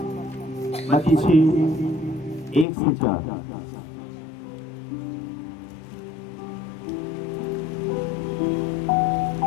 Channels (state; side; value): drops out; right; at 2.7 s